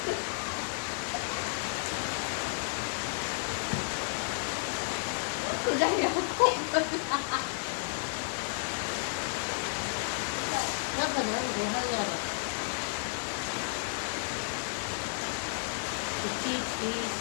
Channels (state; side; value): silent; right; 56 dB below the other